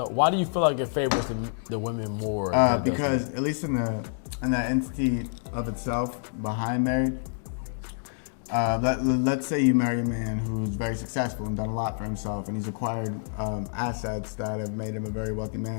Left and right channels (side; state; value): right; silent; digital silence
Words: why do you feel like it favors the women more? than it does Because at least in the entity of itself behind marriage, let's say you marry a man who's very successful and done a lot for himself, and he's acquired assets that have made him a very wealthy